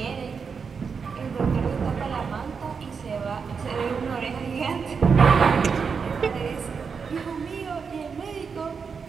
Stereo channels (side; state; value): left; quieter; 5.8 dB